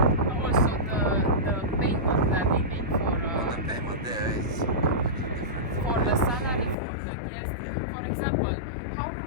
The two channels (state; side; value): drops out; right; at 6.8 s